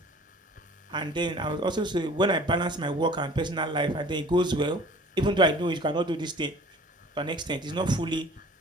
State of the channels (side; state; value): both; normal; correlation 0.48